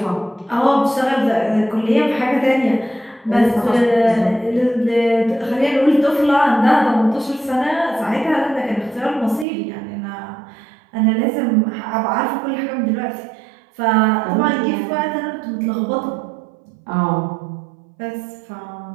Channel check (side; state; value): left; drops out; at 9.5 s